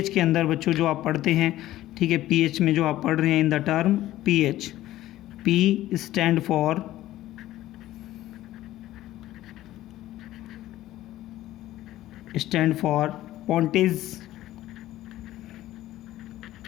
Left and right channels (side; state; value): right; quieter; 14.8 dB